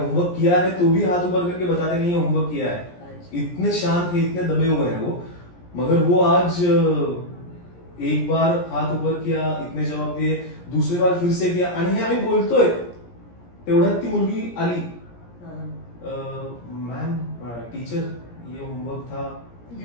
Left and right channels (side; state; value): right; late; 17 ms